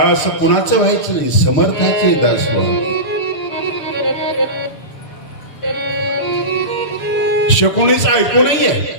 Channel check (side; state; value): right; late; 6.7 ms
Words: कुणाचं व्हायचं नाही, समर्थाचे दास व्हा. शकुनीच ऐकू नाहीये,